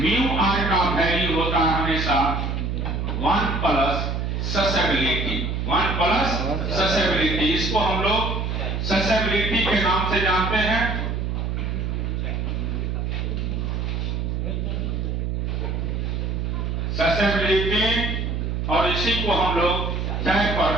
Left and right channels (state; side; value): noise; right; hum, 1 dB below the sound